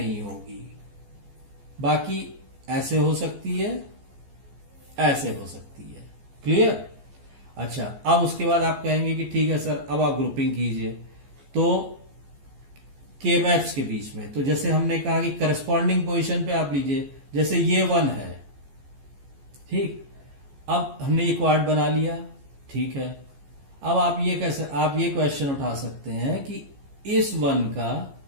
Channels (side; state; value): left; late; 14 ms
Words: होगी। बाकी ऐसे हो सकती है, ऐसे हो सकती है। क्लियर। अच्छा, अब उसके बाद आप कहेंगे कि ठीक है सर, अब आप ग्रुपिंग कीजिए। तो के मैप्स के बीच में, तो जैसे हमने कहा कि करस्पॉन्डिंग पोजीशन पे आप लीजिए, जैसे ये 1 है। ठीक, अब हमने ये क्वाड बना लिया। ठीक है, अब आप ये क्वेश्चन उठा सकते हैं कि इस